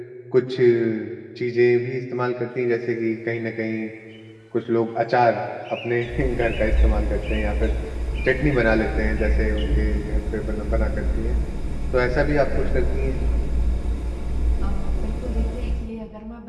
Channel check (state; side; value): identical; both; correlation 1.00